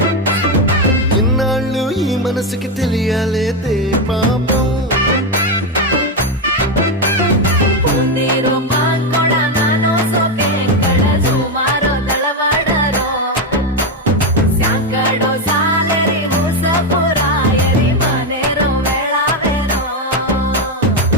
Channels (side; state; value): both; normal; correlation 0.08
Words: ఇన్నాళ్ళు ఈ మనసుకి తెలియాలేదే పాపం